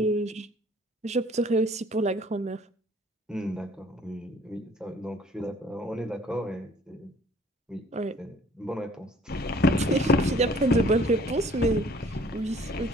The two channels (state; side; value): normal; both; correlation 0.56